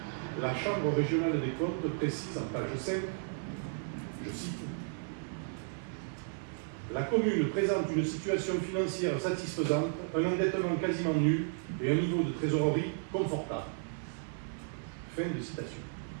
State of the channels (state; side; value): silent; left; 55 dB below the other